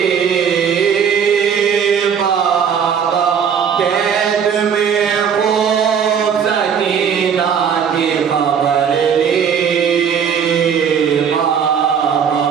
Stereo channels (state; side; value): quieter; left; 7.4 dB